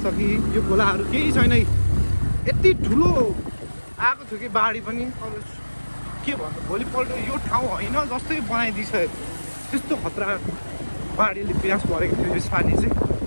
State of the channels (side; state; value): both; inverted; correlation -1.00